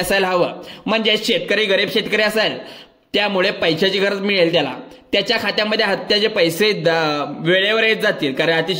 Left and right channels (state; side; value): identical; both; correlation 1.00